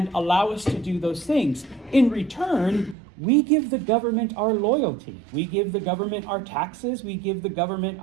allow us to do those things. In return, we give the government our loyalty. We give the government our taxes. We give the government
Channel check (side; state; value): left; drops out; at 3.0 s